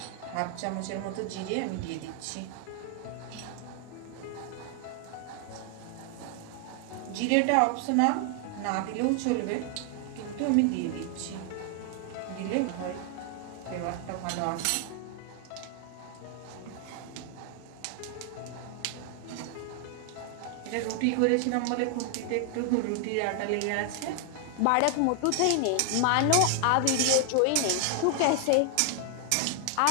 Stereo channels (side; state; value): both; different; correlation 0.00